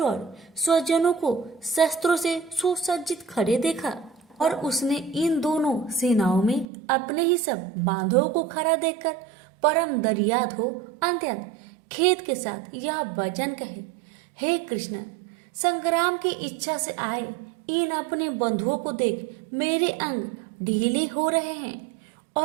और स्वजनों को शस्त्रों से सुसज्जित खड़े देखा और उसने इन दोनों सेनाओं में अपने ही सब बांधवों को खड़ा देखकर परम दर्याद हो अत्यंत खेद के साथ यह वचन कहे, हे कृष्ण, संग्राम की इच्छा से आए इन अपने बंधुओं को देख मेरे अंग ढीले हो रहे हैं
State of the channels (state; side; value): drops out; left; at 6.7 s